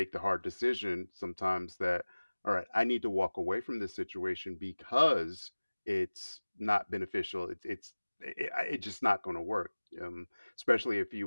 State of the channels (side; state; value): both; inverted; correlation -1.00